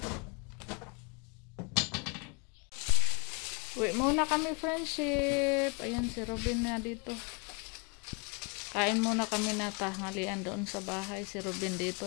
Uwi muna kami, friendship. Ayan si Robin na dito. Kain muna kami na tanghalian doon sa bahay. Si Robin dito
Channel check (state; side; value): quieter; right; 32.9 dB